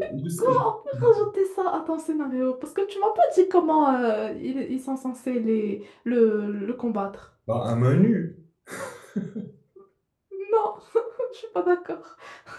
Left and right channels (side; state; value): both; identical; correlation 1.00